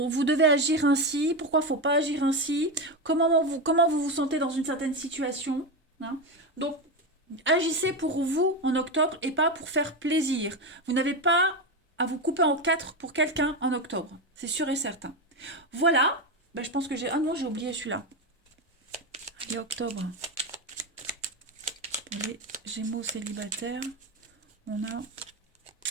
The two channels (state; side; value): normal; both; correlation 0.14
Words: devez agir ainsi, pourquoi il ne faut pas agir ainsi, comment vous vous sentez dans une certaine situation. Hein. Donc, agissez pour vous en octobre et pas pour faire plaisir. Vous n'avez pas à vous couper en quatre pour quelqu'un en octobre. C'est sûr et certain. Voilà. Ben, je pense que j'ai... Ah non, j'ai oublié celui-là. Et octobre, les Gémeaux célibataires, on a